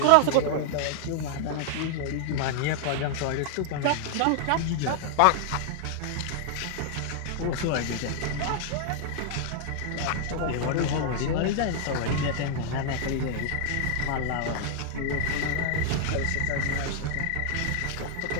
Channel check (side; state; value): both; different; correlation -0.01